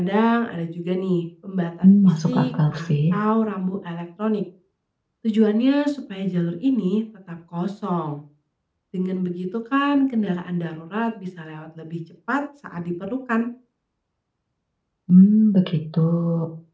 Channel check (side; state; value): both; identical; correlation 1.00